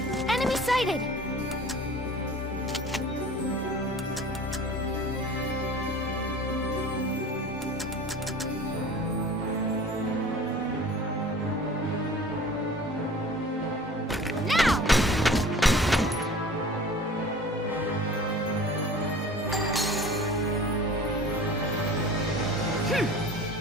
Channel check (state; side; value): normal; both; correlation 0.43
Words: Enemy sighted! Now!